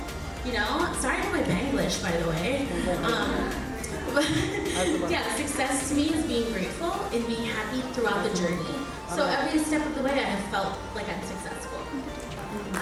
Sorry for my Banglish, by the way. Yeah, success to me is being grateful and being happy throughout the journey. So every step of the way, I have felt like I'm successful.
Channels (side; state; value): both; identical; correlation 1.00